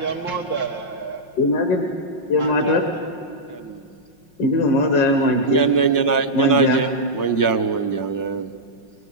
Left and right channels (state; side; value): late; right; 5.5 ms